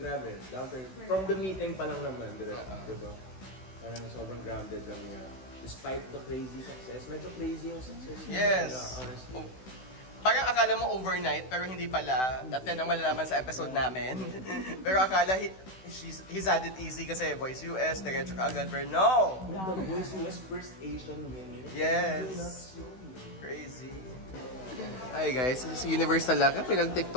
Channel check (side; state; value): right; late; 16 ms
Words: Down to, from the meeting pa lang naman, diba? Parang sobrang grounded lang niya. Despite the crazy success, medyo crazy yung success niya. Yes. Honestly. Parang akala mo overnight, pero hindi pala. At yan ang malalaman sa episode namin. Pero akala he's had it easy kasi Voice US, diretso ka agad. Pero no! The Voice US first Asian winner. Yes. Crazy. Hi guys, this is Universe talaga.